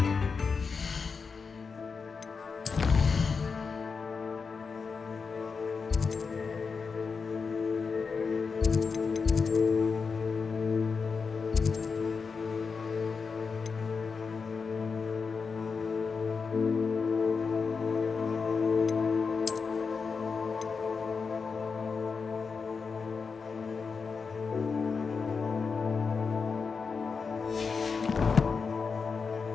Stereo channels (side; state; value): right; quieter; 5.2 dB